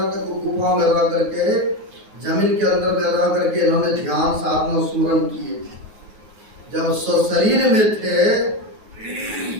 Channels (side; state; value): left; late; 9.5 ms